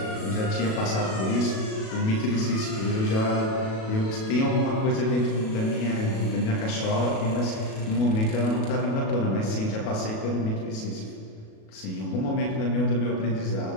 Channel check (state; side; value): late; right; 37 ms